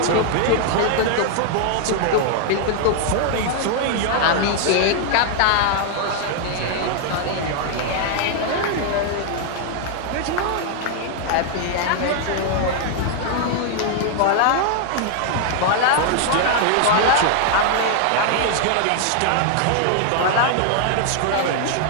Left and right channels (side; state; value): both; different; correlation 0.00